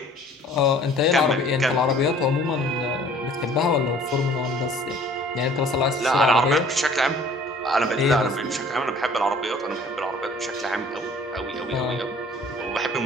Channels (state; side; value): normal; both; correlation 0.52